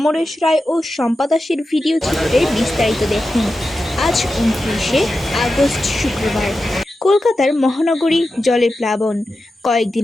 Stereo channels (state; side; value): normal; both; correlation 0.91